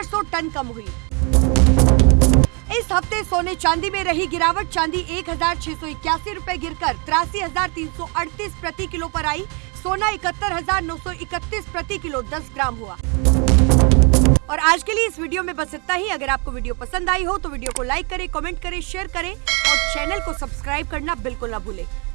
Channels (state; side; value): quieter; left; 33.7 dB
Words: टन कम हुई। इस हफ्ते सोने चांदी में रही गिरावट, चांदी 1,681 रुपए गिरकर 83,338 प्रति किलो पर आई। सोना 71,931 प्रति किलो 10 ग्राम हुआ। और आज के लिए इस वीडियो में बस इतना ही। अगर आपको वीडियो पसंद आई हो तो वीडियो को लाइक करें, कमेंट करें, शेयर करें और चैनल को सब्सक्राइब करना बिल्कुल ना भूलें।